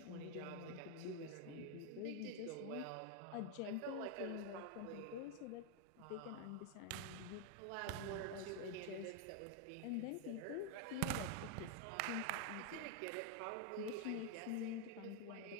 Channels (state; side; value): different; both; correlation 0.01